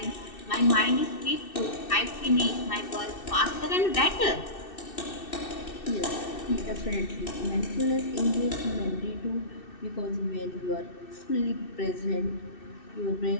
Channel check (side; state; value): right; late; 2.6 ms